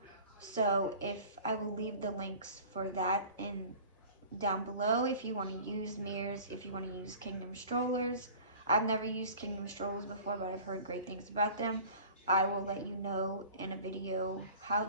So if I will leave the links for that in down below if you want to use Mears, if you want to use Kingdom strollers. I've never used Kingdom strollers before, but I've heard great things about them. I will let you know in a video how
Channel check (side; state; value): both; inverted; correlation -0.44